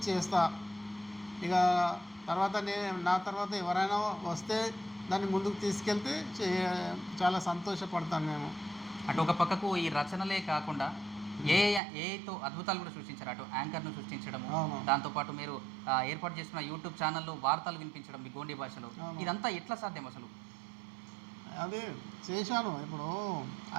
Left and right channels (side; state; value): left; drops out; at 11.8 s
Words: చేస్తా. ఇక నా తర్వాత ఎవరైనా వస్తే దాన్ని ముందుకు తీసుకెళ్తే చాలా సంతోషపడతాను నేను. అటు ఒక పక్కకు ఈ రచనలే కాకుండా ఏఐతో అద్భుతాలు కూడా సృష్టించారు. అటు యాంకర్ను సృష్టించడము, దాంతోపాటు మీరు ఏర్పాటు చేసిన యూట్యూబ్ ఛానల్లో వార్తలు వినిపించడం మీ గోండి భాషలో, ఇదంతా ఎట్లా సాధ్యం అసలు? అదే చేశాను. ఇప్పుడు